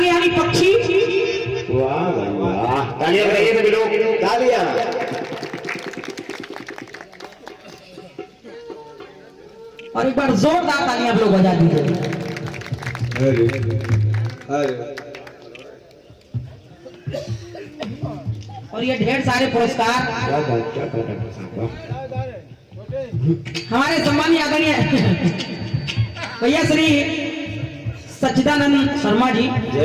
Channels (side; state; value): both; identical; correlation 1.00